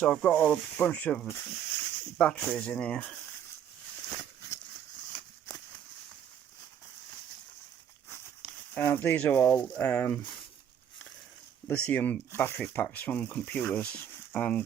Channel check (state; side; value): quieter; left; 9.2 dB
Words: I've got a bunch of batteries in here. These are all lithium battery packs from computers, and